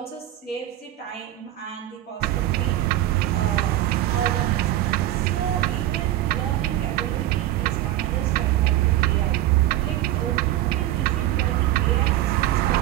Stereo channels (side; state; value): left; quieter; 14.1 dB